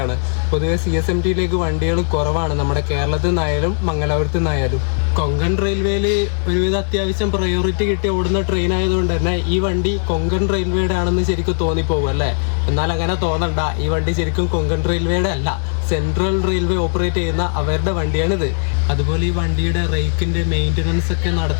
പൊതുവെ CSMTയിലേക്ക് വണ്ടികൾ കുറവാണ് നമ്മുടെ കേരളത്തിൽ നിന്നായാലും മംഗലാപുരത്ത് നിന്നായാലും. കൊങ്കൺ റെയിൽവേയിൽ ഒരുവിധം അത്യാവശ്യം പ്രയോറിറ്റി കിട്ടി ഓടുന്ന ട്രെയിൻ ആയതുകൊണ്ട് തന്നെ ഈ വണ്ടി കൊങ്കൺ റെയിൽവേയുടെ ആണെന്ന് ശരിക്കും തോന്നിപ്പോകും അല്ലേ. എന്നാൽ അങ്ങനെ തോന്നണ്ട, ഈ വണ്ടി ശരിക്കും കൊങ്കൺ റെയിൽവേയുടെ അല്ല, സെൻട്രൽ റെയിൽവേ ഓപ്പറേറ്റ് ചെയ്യുന്ന അവരുടെ വണ്ടിയാണിത്. അതുപോലെ ഈ വണ്ടിയുടെ റേക്കിൻ്റെ മെയിൻ്റനൻസ് ഒക്കെ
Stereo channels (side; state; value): right; silent; 63 dB below the other